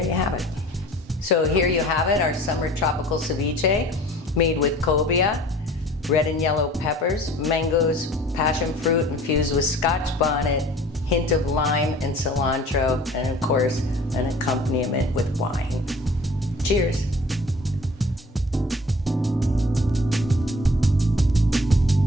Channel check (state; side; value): normal; both; correlation 0.48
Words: you have it. So here you have it, our summer tropical ceviche made with cobia, red and yellow peppers, mangoes, passion fruit infused with Scotch bonnet, hint of lime and cilantro, and of course, an accompaniment with wine. Cheers.